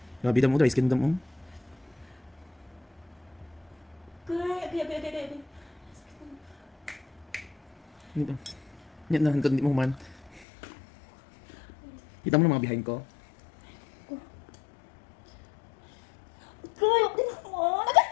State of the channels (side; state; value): right; drops out; at 10.5 s